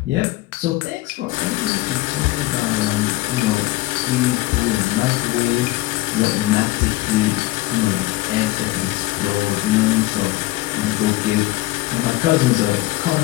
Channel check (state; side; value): quieter; right; 18.5 dB